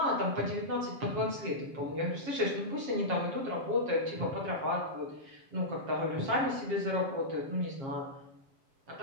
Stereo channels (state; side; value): late; left; 7.4 ms